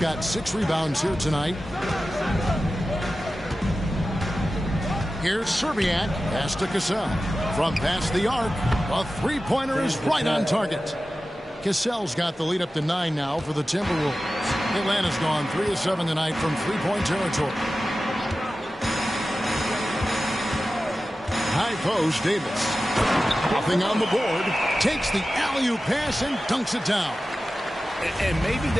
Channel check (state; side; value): normal; both; correlation 0.94